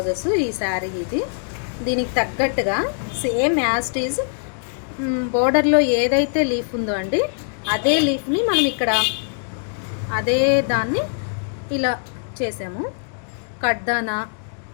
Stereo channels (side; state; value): right; silent; digital silence